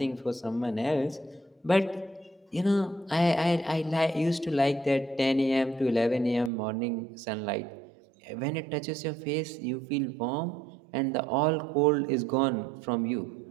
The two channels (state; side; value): drops out; left; at 6.5 s